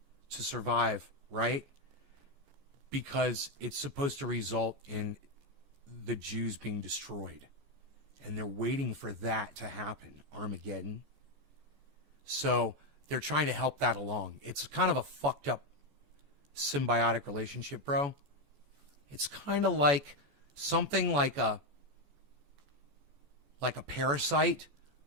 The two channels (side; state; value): left; late; 14 ms